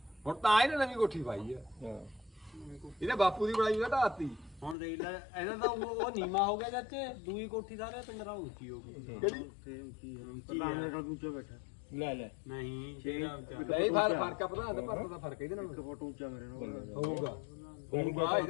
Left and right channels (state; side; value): drops out; right; at 4.8 s